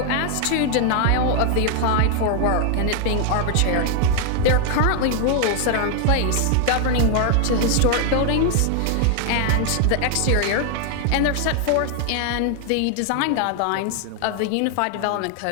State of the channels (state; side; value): different; both; correlation 0.00